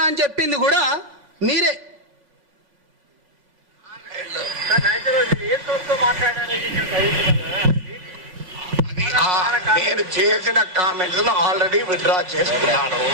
అని చెప్పింది కూడా మీరే. నేను చేసిన కామెంట్స్ ఆల్రెడీ విత్డ్రా చేసుకున్నాను.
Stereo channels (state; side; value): late; left; 3.5 ms